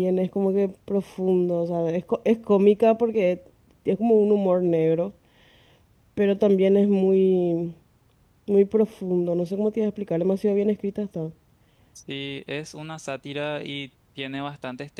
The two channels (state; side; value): identical; both; correlation 1.00